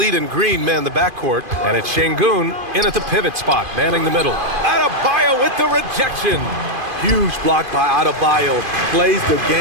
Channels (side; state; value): left; late; 2.5 ms